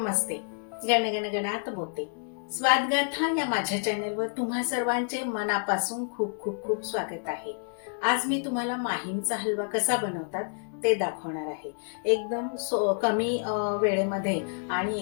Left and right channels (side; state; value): right; silent; 59 dB below the other